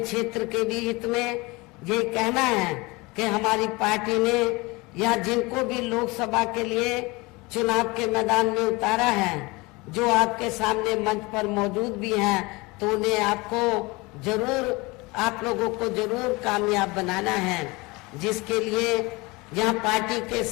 के भी हित में यही कहना है कि हमारी पार्टी ने या जिनको भी लोकसभा के लिए चुनाव के मैदान में उतारा है, जो आपके सामने मंच पर मौजूद भी हैं, तो उन्हें आपको जरूर, आप लोगों को जरूर कामयाब बनाना है, जिसके लिए यहाँ पार्टी के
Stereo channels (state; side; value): quieter; right; 24.2 dB